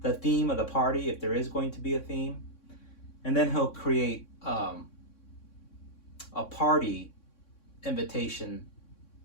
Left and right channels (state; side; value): late; right; 3.6 ms